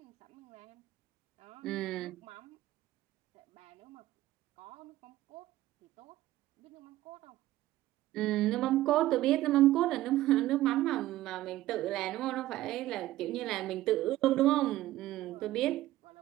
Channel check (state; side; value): quieter; left; 15.5 dB